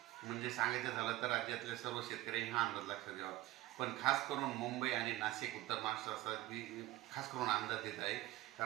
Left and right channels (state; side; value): quieter; left; 16.8 dB